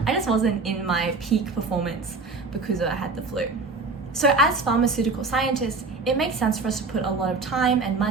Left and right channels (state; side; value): quieter; left; 4.0 dB